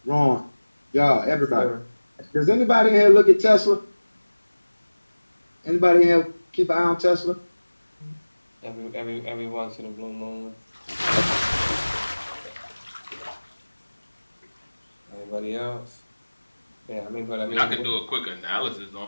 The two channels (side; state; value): both; inverted; correlation -1.00